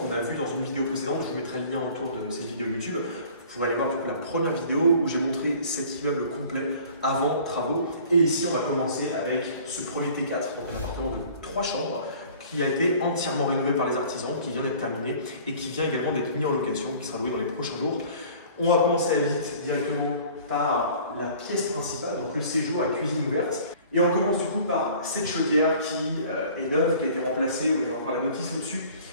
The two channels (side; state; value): both; inverted; correlation -0.48